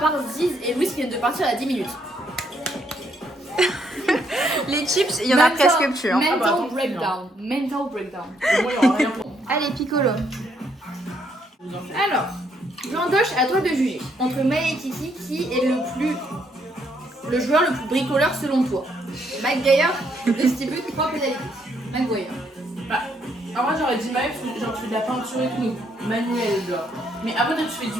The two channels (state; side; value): normal; both; correlation 0.72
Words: Ziz et Louis qui viennent de partir à 10 minutes. Les chips, il y en a presque plus. Hein. Mental attends, breakdown. Mental breakdown. Moi, il y aura rien pour moi. Allez, Piccolo. Alors, Jean-Doche, à toi de juger. Entre Maë et Kiki, qui est le joueur le plus bricoleur selon toi? McGuire distribue 3 pénalités. McGuire. Bah, en vrai, j'aurais dit Maël, genre tu fais de la peinture et tout, manuel, genre. Mais après, toi, tu fais